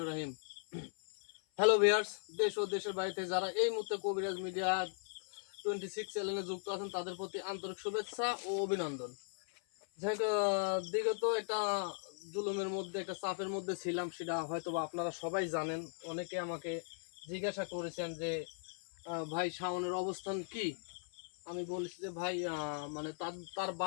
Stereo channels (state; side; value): silent; right; 52 dB below the other